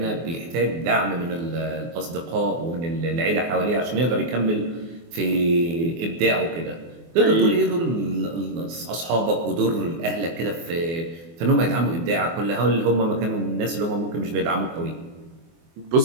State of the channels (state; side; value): late; left; 24 ms